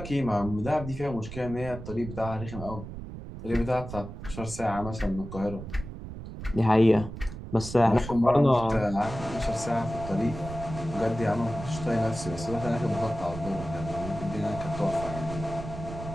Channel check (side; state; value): right; noise; rumble, 10 dB below the sound